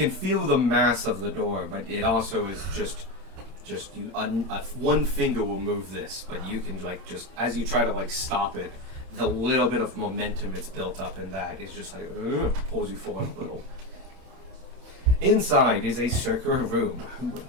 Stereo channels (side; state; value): left; late; 31 ms